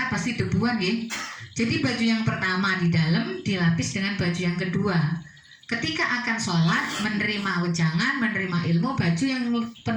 pasti debuan ya. Jadi baju yang pertama di dalam dilapis dengan baju yang kedua. Ketika akan sholat, menerima wejangan, menerima ilmu, baju yang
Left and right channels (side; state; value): both; identical; correlation 1.00